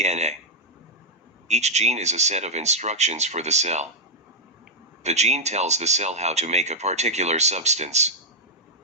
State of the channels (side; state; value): both; normal; correlation -0.05